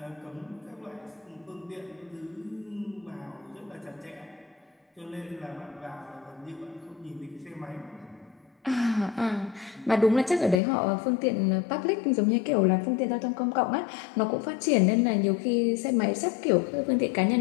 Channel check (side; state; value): right; drops out; at 10.6 s